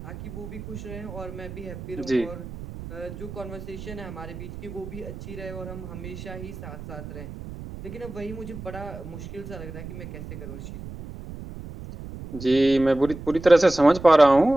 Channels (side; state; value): right; noise; rumble, 11 dB below the sound